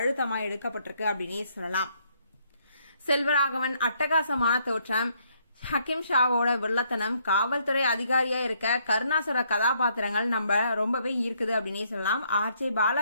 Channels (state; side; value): inverted; both; correlation -0.70